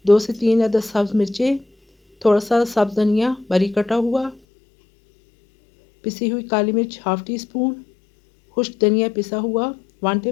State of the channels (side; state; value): right; drops out; at 4.4 s